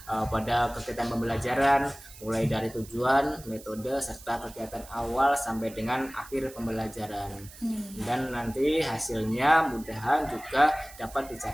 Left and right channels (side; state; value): right; noise; hiss, 19 dB below the sound